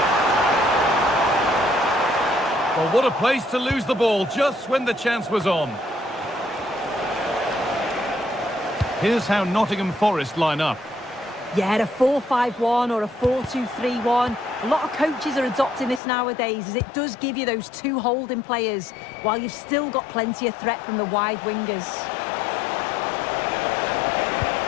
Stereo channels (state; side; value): drops out; right; at 16.0 s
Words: Well, what a place to lose the ball just when the chance was on. Here's how Nottingham Forest line up. Yeah, a 4-5-1 or a 4-2-3-1. A lot of coaches are adopting this nowadays, as it does give you those two holding players, while you've still got plenty of threat from the wide wingers.